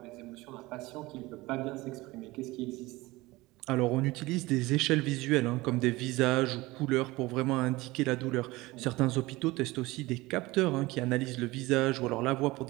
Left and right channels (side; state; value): left; quieter; 20.6 dB